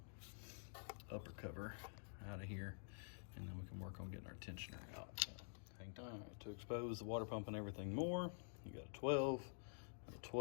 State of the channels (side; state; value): right; silent; digital silence